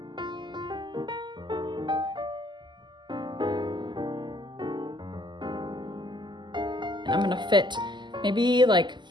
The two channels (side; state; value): left; late; 0.22 ms